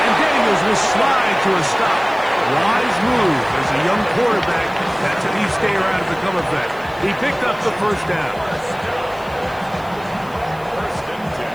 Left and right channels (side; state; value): left; noise; hiss, 25 dB below the sound